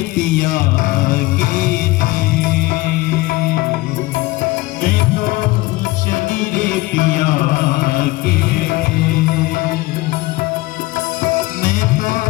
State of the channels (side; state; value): right; quieter; 20.1 dB